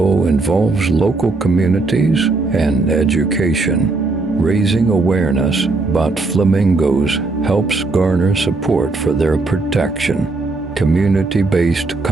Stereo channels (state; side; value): quieter; left; 3.5 dB